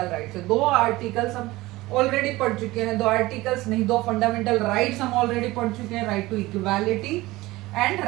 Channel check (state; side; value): quieter; left; 19.3 dB